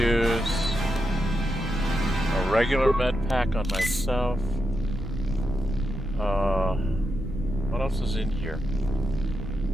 a regular med pack on myself. What else is in here?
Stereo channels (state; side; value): normal; both; correlation 0.86